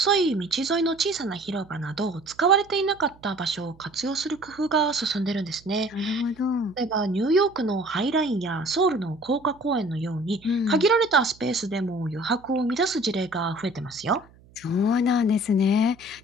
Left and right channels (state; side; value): noise; right; hum, 27 dB below the sound